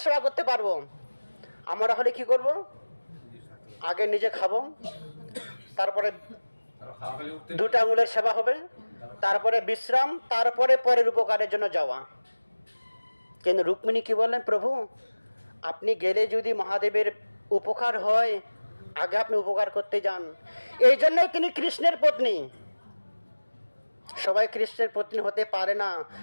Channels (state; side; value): inverted; both; correlation -1.00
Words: সেবা করতে পারবো। আমরা হলে কি করব? আগে নিজে খাবো, তারপরে দুটা আঙুলের সেবা হবে, তারপরে বিশ্রাম, তারপরে পরের উপকারের জন্য যাওয়া। কিন্তু রুক্মিণী কি বললেন? প্রভু আপনি গেলে যদি মহাদেবের উপকার হয়, আগে আপনি উপকার করতে যান। এই জন্যই তিনি কৃষ্ণের পত্নী। সবাই কৃষ্ণের পত্নী হতে পারে না।